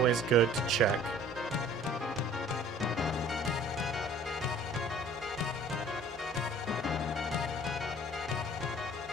good to check.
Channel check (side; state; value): both; normal; correlation 0.50